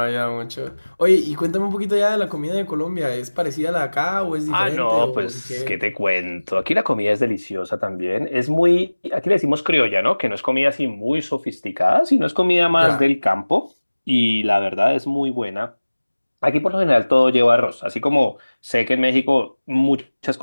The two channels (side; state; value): both; inverted; correlation -1.00